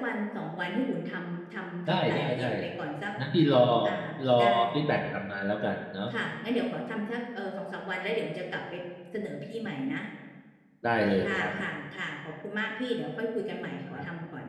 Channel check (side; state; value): both; identical; correlation 1.00